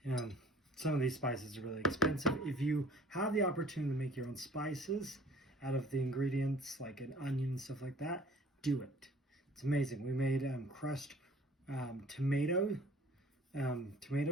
Some of these spices are really expensive. If you have the opportunity to make your own spices out of the ingredients, like an onion and stuff like that, do it. It's amazing. We made crushed tomato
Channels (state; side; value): normal; both; correlation 0.51